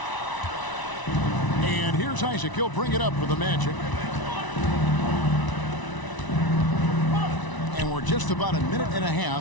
And here's Isaac. He'll bring it up for the Magic. And we're just about a minute and a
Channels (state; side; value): late; right; 1.0 ms